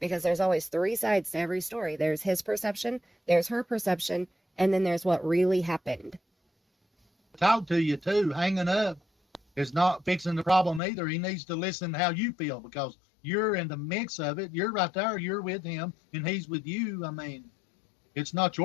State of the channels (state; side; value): drops out; right; at 10.8 s